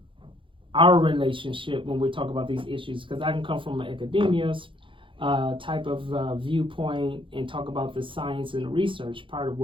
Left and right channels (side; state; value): left; late; 0.25 ms